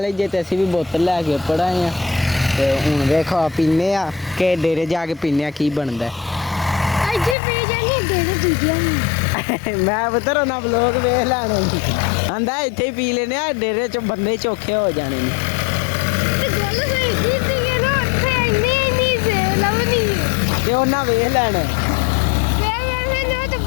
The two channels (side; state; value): right; drops out; at 7.4 s